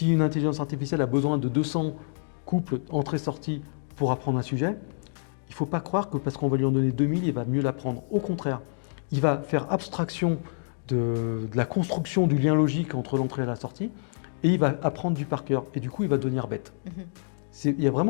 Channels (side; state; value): right; silent; digital silence